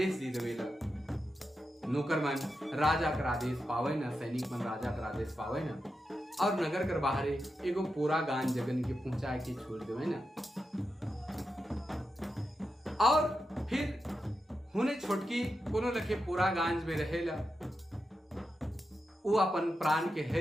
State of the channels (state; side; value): normal; both; correlation 0.88